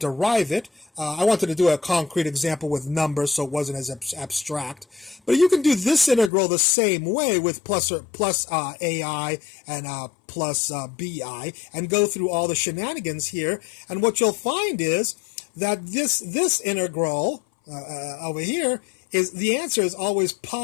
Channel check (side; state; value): right; drops out; at 6.3 s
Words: it. I wanted to do a concrete example with numbers so it wasn't as abstract. But you can do this integral the same way with plus AI and plus BI and go through all the shenanigans here. And what you'll find is that this integral over here is the answer is always